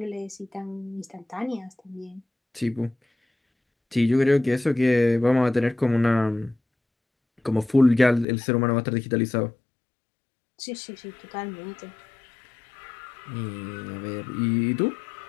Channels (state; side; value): drops out; right; at 8.2 s